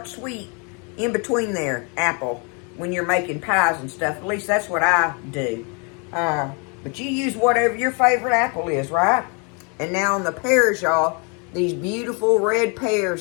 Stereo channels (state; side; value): quieter; right; 34.3 dB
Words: sweet, in between there, apple, when you're making pies and stuff. At least that's what I do. But you use whatever your favorite apple is, right? And now on the pears, y'all, these beautiful red